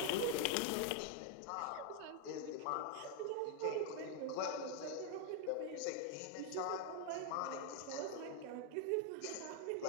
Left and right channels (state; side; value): different; both; correlation 0.00